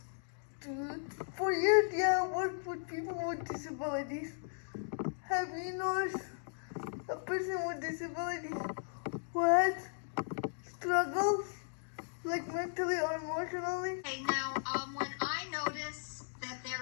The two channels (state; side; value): silent; right; digital silence